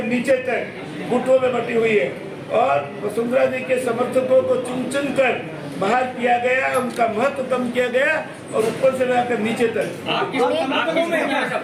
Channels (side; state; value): both; identical; correlation 1.00